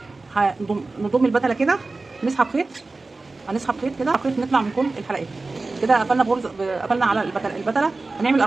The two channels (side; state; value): left; quieter; 3.5 dB